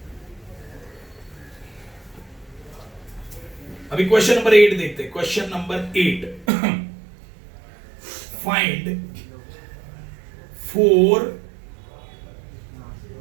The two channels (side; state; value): left; drops out; at 6.5 s